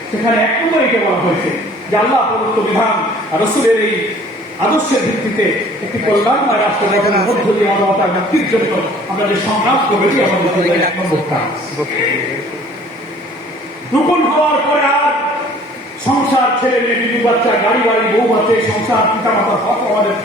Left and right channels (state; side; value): normal; both; correlation 0.52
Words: সেখানে এক নম্বরে এটা বলা হয়েছে যে আল্লাহ প্রদত্ত বিধান আর রাসূলের এই আদর্শের ভিত্তিতে একটি কল্যাণময় রাষ্ট্র গঠনের মধ্য দিয়ে মানবতার মুক্তির জন্য আমরা যে সংগ্রাম করেছি, আমাদের এক নম্বর কাজ। রূপন হওয়ার পরে আর সংসার, ছেলে মেয়ে, বিবি বাচ্চা, গাড়ি বাড়ি, বউ বাচ্চা, সংসার, পিতা মাতার হক আমাদের